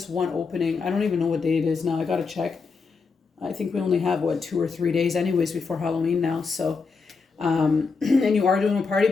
one opening. I don't even know what day it is now. I got to check. I think we only have, 2 or 3 days anyways before Halloween now. So, and you are doing a party,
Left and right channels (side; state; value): right; quieter; 4.8 dB